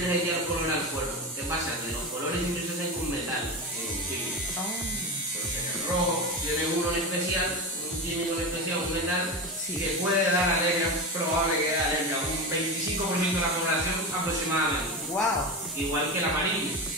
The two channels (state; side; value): normal; both; correlation 0.22